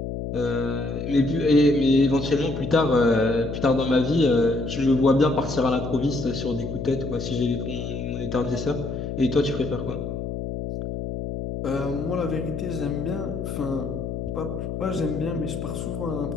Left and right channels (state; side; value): noise; left; hum, 5 dB below the sound